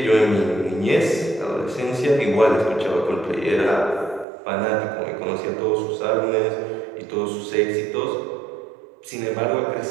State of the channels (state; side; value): drops out; left; at 4.2 s